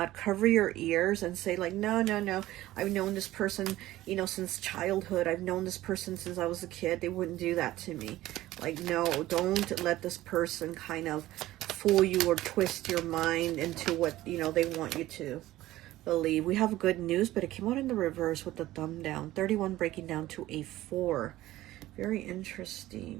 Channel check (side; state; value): left; quieter; 15.9 dB